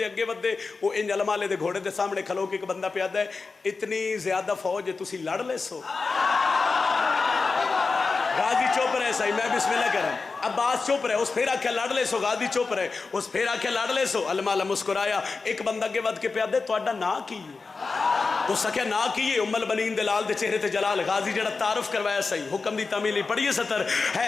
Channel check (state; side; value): quieter; right; 4.3 dB